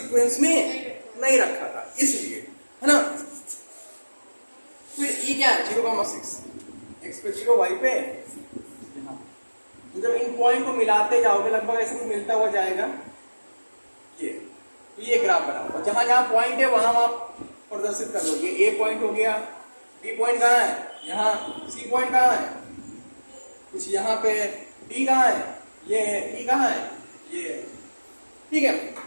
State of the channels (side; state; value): both; inverted; correlation -1.00